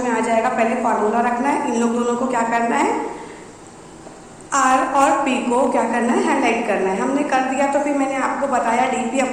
आ जाएगा। पहले फॉर्मूला रखना है, इन लोग दोनों को क्या करना है, R और P को क्या करना है, हाईलाइट करना है। हमने कर दिया तो फिर मैंने आपको बताया dp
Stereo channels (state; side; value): identical; both; correlation 1.00